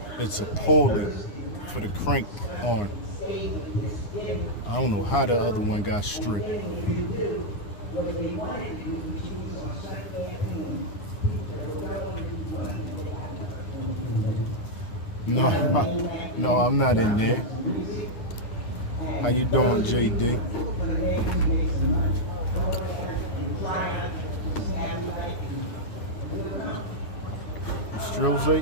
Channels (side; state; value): right; late; 9.8 ms